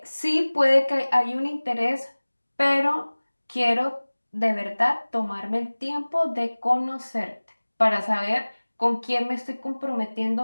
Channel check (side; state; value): both; inverted; correlation -1.00